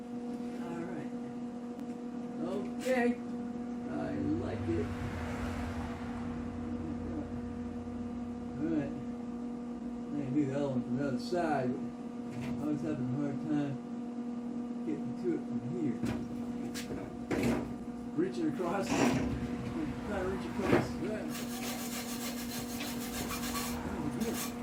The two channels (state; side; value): identical; both; correlation 1.00